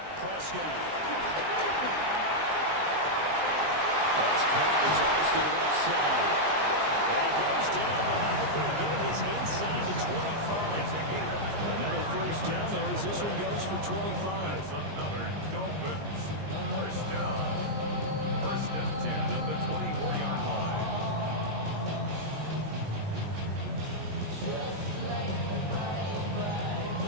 Prescott. That's caught as Austin left side. And he goes down, but not before getting his inside the 25. Another 1st down there as this one goes for 25. That's another Dolphins 1st down. 1st and 10 at the 24-yard line.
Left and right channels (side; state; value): left; late; 19 ms